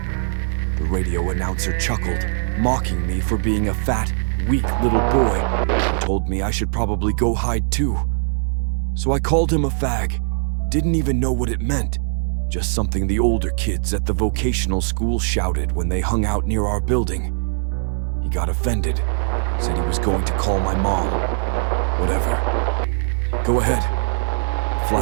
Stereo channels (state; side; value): silent; left; digital silence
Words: The radio announcer chuckled, mocking me for being a fat, weak little boy, and told me I should probably go hide too. So I called him a fag. Didn't even know what it meant. Just something the older kids at the vocational school shouted when they hung out near our building. He got offended, said he was going to call my mom. Whatever. Go ahead. The